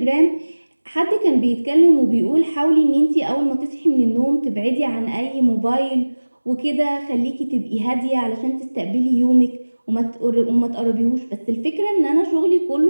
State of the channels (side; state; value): both; inverted; correlation -1.00